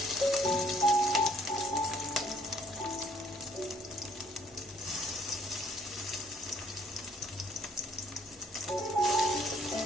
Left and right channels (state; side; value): normal; both; correlation 0.63